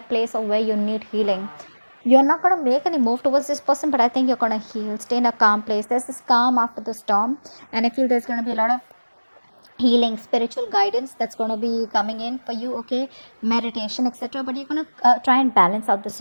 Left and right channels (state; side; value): inverted; both; correlation -1.00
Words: place of where you need healing. You're not going to make any move towards this person, but I think you're going to heal, stay in a calm place. There's this calm after the storm, and I feel there's going to be a lot of healing, spiritual guidance that's going to be coming in for you, okay, meditation, etc. But you're going to try and balance out the